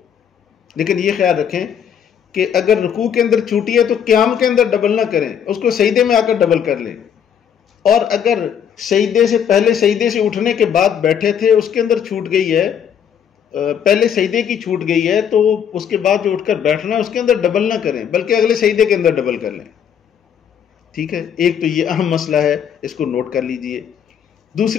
لیکن یہ خیال رکھیں کہ اگر رکوع کے اندر چھوٹی ہے تو قیام کے اندر ڈبل نہ کریں، اس کو سجدے میں آ کر ڈبل کر لیں۔ اور اگر سجدے سے پہلے سجدے سے اٹھنے کے بعد بیٹھے تھے، اس کے اندر چھوٹ گئی ہے، پہلے سجدے کی چھوٹ گئی ہے، تو اس کے بعد جو اٹھ کر بیٹھنا ہے اس کے اندر ڈبل نہ کریں، بلکہ اگلے سجدے کے اندر ڈبل کر لیں۔ ٹھیک ہے، ایک تو یہ اہم مسئلہ ہے، اس کو نوٹ کر لیجئے۔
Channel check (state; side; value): quieter; right; 8.3 dB